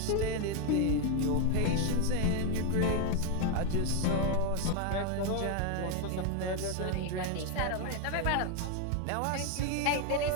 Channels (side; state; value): both; different; correlation 0.01